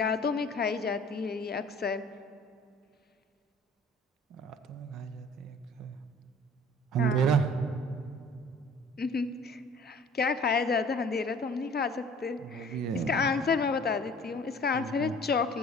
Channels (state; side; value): normal; both; correlation 0.50